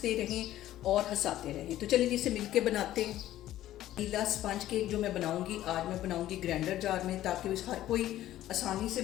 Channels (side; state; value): right; quieter; 13.6 dB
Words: रहें और हंसाते रहें। तो चलिए इसे मिल के बनाते हैं। वनीला स्पंज केक जो मैं बनाऊंगी आज मैं बनाऊंगी ग्राइंडर जार में, ताकि हर कोई आसानी से